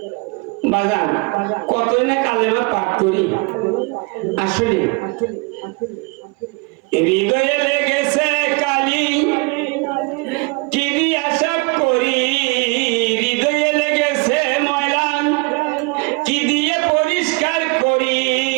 বাজান কতই না কালেমা পাঠ করি, আসলে হৃদয়ে লেগেছে কালি কি দিয়া সাফ করি, হৃদয়ে লেগেছে ময়লা কি দিয়ে পরিষ্কার করি,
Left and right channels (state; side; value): quieter; left; 29.7 dB